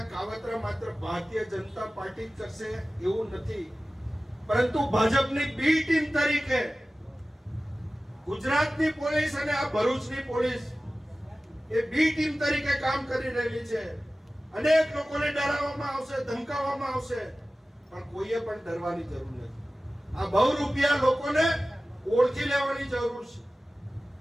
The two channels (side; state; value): both; normal; correlation 0.96